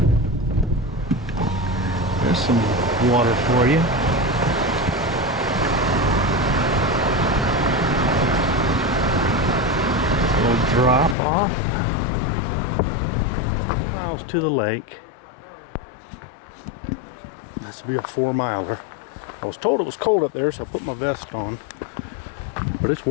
There's some water for you. A little drop off. Miles to the lake. This will be a 4-miler. I was told it was cold up there, so I put my vest on. But it's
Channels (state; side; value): drops out; right; at 11.2 s